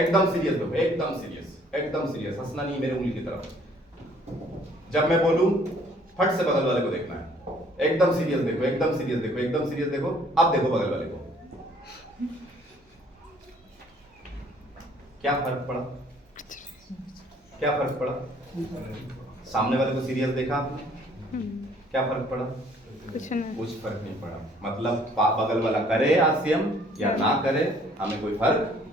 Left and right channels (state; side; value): normal; both; correlation 0.60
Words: सीरियस देखो, एकदम सीरियस, हंसना नहीं, मेरे उंगली की तरफ। जब मैं बोलूं फट से बगल वाले को देखना है, एकदम सीरियस देखो, एकदम सीरियस देखो। अब देखो बगल वाले को, क्या फर्क पड़ा? सामने वाले को सीरियस देखा आपने, क्या फर्क पड़ा? कुछ नहीं। कुछ फर्क नहीं पड़ा। मतलब बगल वाला करे आरसीएम या ना करे, हमें कोई फर्क